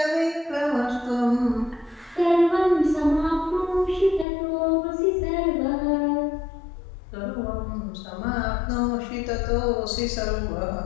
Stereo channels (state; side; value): drops out; right; at 4.2 s